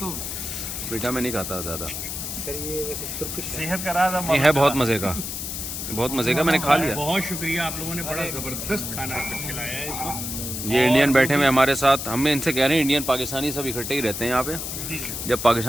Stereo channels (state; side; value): noise; left; hiss, 5 dB below the sound